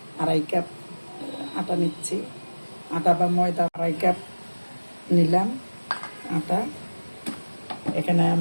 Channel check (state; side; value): inverted; both; correlation -1.00